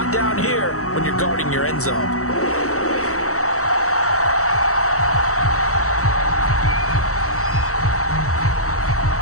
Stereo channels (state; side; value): late; right; 0.65 ms